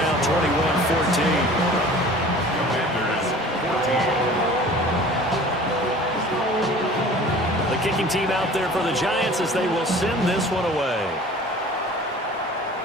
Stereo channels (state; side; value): normal; both; correlation 0.45